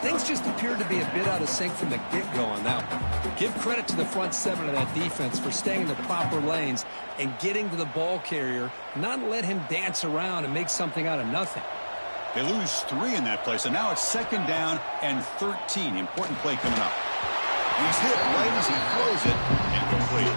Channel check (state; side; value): inverted; both; correlation -1.00